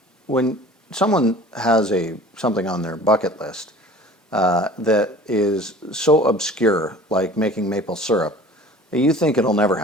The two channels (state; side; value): normal; both; correlation 0.45